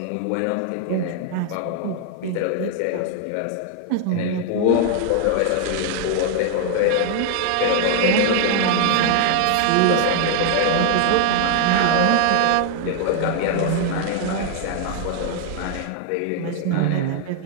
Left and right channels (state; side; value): different; both; correlation 0.00